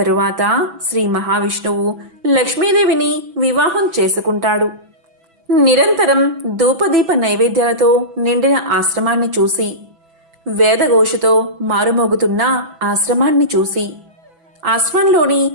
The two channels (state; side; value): late; left; 6.0 ms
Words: శ్రీ మహావిష్ణువు లక్ష్మీదేవిని వివాహం చేసుకుంటాడు. నిరంతరం ధూపదీప నైవేద్యాలతో నిండిన ఆశ్రమాన్ని చూసి, వేదఘోషతో మారుమోగుతున్న ఆశ్రమాన్ని చూసి, ఆశ్రమంలోని